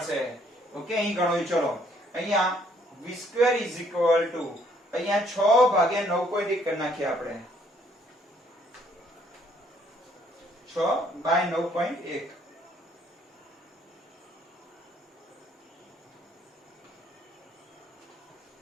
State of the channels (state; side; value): normal; both; correlation 0.65